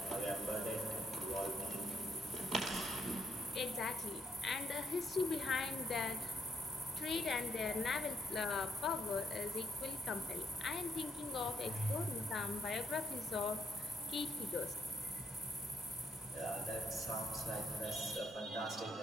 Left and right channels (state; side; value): normal; both; correlation 0.74